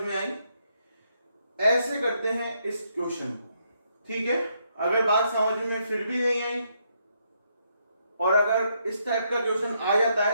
में आई। ऐसे करते हैं इस क्वेश्चन को। ठीक है, अगर बात समझ में फिर भी नहीं आई और अगर इस टाइप का क्वेश्चन आ जाता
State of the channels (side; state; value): both; inverted; correlation -0.76